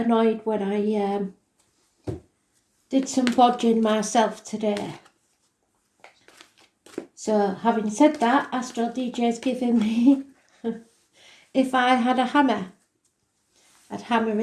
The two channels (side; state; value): both; identical; correlation 1.00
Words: when I did some bodging myself today. So having said that, Astral DJ's giving me, if I had a hammer, I'd hammer